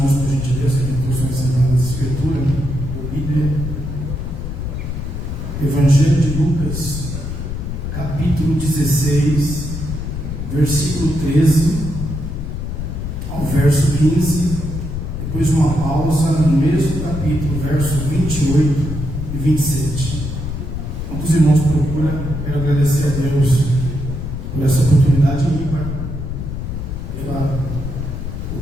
por gentileza, que possam sentar na Escritura, a Bíblia, Evangelho de Lucas, capítulo 16, versículo 13 ao verso 15, depois uma pausa no mesmo capítulo, versos 28 e 27. Quando os irmãos procuram, quero agradecer a Deus por essa oportunidade ímpar, pela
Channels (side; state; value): left; noise; rumble, 5 dB below the sound